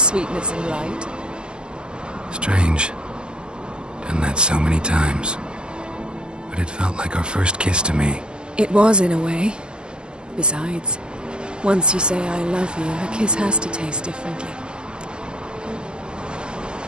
and light. Strange. Done that so many times. But it felt like our first kiss to me. It was, in a way. Besides, once you say I love you, a kiss has to taste differently.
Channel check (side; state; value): left; late; 0.050 ms